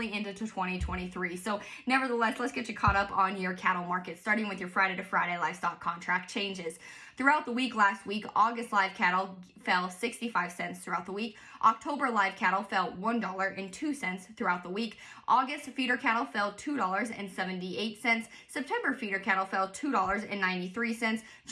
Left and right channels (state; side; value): identical; both; correlation 1.00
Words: into 2023. So nevertheless, let's get you caught up on your cattle market, starting with your Friday to Friday livestock contract changes. Throughout the week last week, August live cattle fell 65 cents throughout the week. October live cattle fell $1.02 throughout the week. August feeder cattle fell $2.78. September feeder cattle fell $2.93.